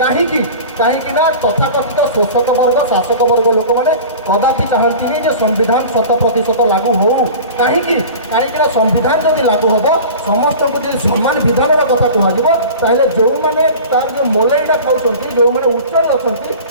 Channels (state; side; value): inverted; both; correlation -0.37